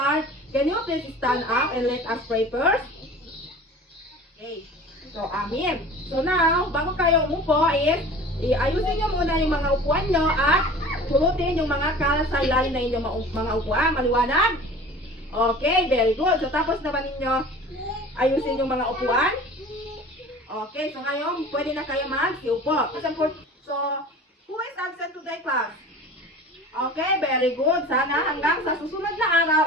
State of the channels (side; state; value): both; normal; correlation 0.41